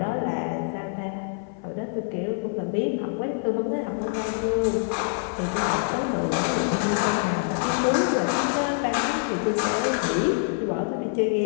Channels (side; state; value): right; silent; 55 dB below the other